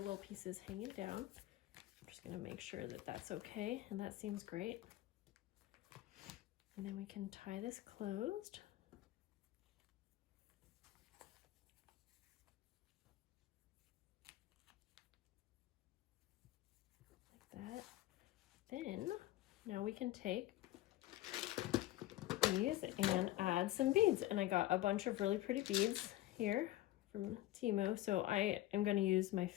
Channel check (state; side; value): quieter; right; 15.7 dB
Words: pieces hanging down. I'm just going to make sure that that's okay, and that seems great. And then we can tie this closed. Like that. Then, now we can take these and add some beads. And I got a bunch of really pretty beads here from TEMU. So I am going to use my